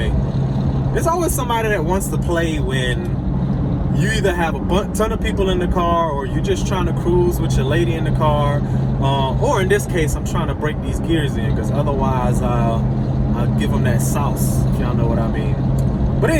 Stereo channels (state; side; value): identical; both; correlation 1.00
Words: There's always somebody that wants to play when you either have a ton of people in the car, or you're just trying to cruise with your lady in the car, or in this case, I'm trying to break these gears in, because otherwise I'll give them that sauce, if y'all know what I mean. But